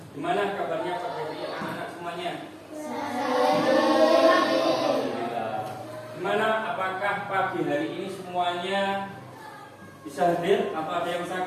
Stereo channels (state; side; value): identical; both; correlation 1.00